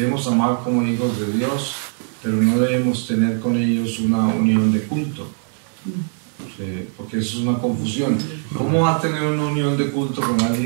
amar como hijos de Dios, pero no debemos tener con ellos una unión de culto. Porque eso es una confusión. ¿Cómo va a tener una unión de culto con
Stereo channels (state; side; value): silent; left; 58 dB below the other